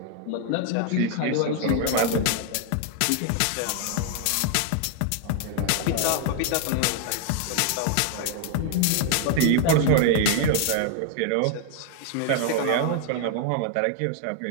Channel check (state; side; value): different; both; correlation 0.00